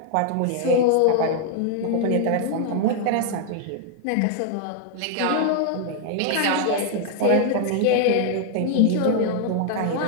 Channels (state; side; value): different; both; correlation 0.00